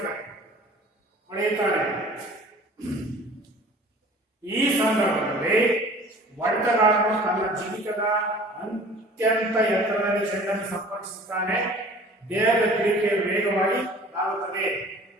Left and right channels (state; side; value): normal; both; correlation 0.47